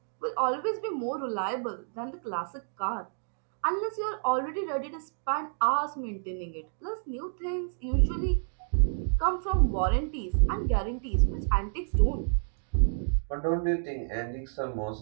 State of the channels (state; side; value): silent; left; digital silence